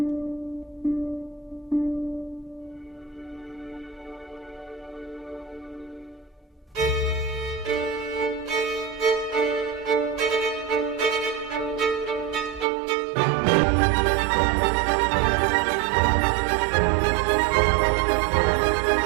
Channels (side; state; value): left; drops out; at 12.7 s